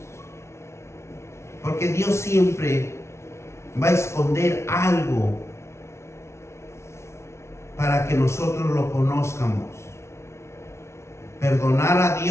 Porque Dios siempre va a esconder algo para que nosotros lo conozcamos. Perdonar a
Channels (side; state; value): right; late; 0.13 ms